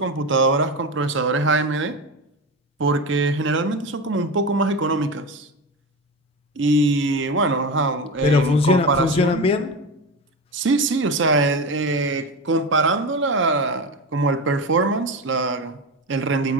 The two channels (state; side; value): normal; both; correlation 0.22